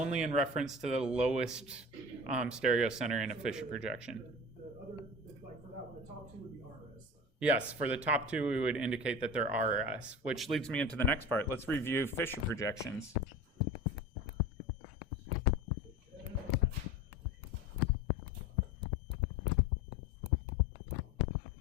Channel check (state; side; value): normal; both; correlation 0.34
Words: in reference to the lowest stereocenter in a Fischer projection. The other, like for that one, the top 2 would be RS. Yes, for the top 2, we would indicate that they're RS, which leads me into the next part. Let's review Fischer projections.